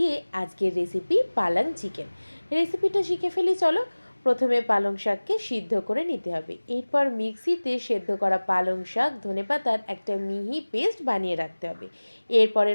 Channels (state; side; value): inverted; both; correlation -1.00